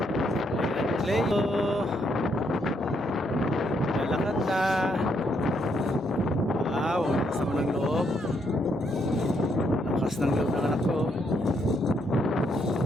Play. Lakad na. Wow, lakas naman ng loob. Lakas ng loob ng anak ko.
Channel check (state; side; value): normal; both; correlation 0.75